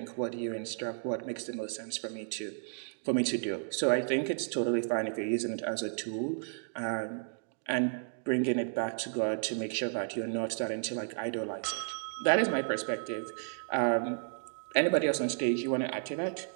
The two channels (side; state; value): left; silent; digital silence